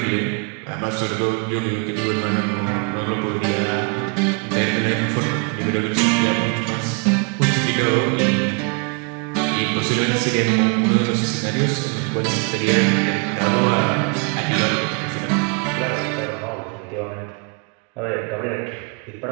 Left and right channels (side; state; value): left; quieter; 35.6 dB